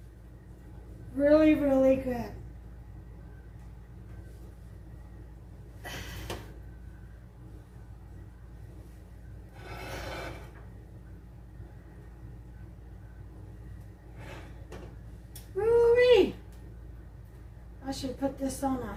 Really, really good. Woo-wee. I should put this on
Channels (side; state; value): both; identical; correlation 1.00